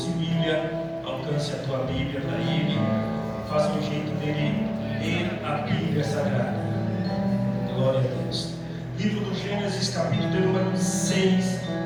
Bíblia, alcance a tua Bíblia para ele. Faça um jeito dele ler a Bíblia Sagrada. Glória a Deus. Livro do Gênesis, capítulo de número 6,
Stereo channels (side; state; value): both; identical; correlation 1.00